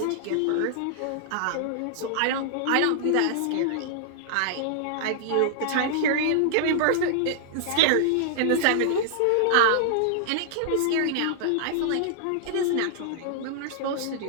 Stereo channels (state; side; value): different; both; correlation -0.01